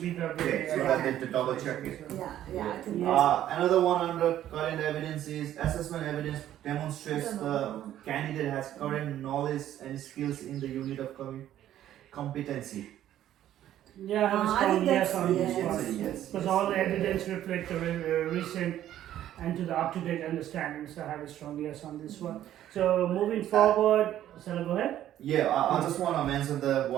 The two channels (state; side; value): quieter; left; 12.1 dB